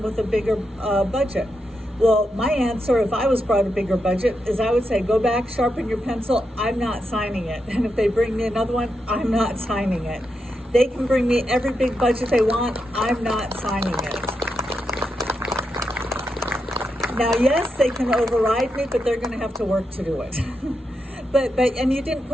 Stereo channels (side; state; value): both; normal; correlation 0.85